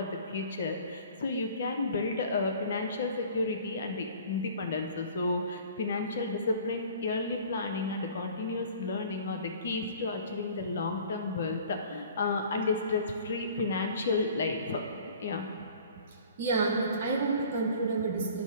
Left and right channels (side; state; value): both; inverted; correlation -0.48